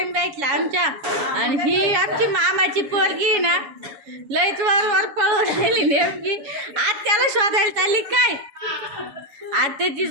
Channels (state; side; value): late; left; 7.2 ms